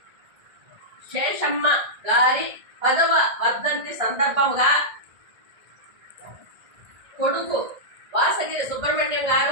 శేషమ్మ గారి 10వ వర్ధంతి సందర్భంగా కొడుకు వాసగిరి సుబ్రహ్మణ్యం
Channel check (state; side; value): late; left; 1.9 ms